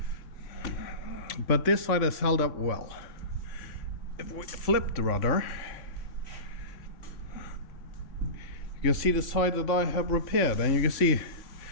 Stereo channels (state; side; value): late; right; 3.5 ms